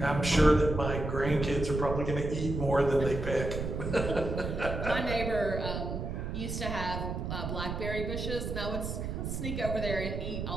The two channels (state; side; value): noise; right; rumble, 4 dB below the sound